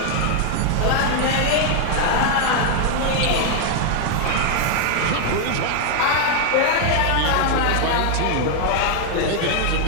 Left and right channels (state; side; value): different; both; correlation 0.00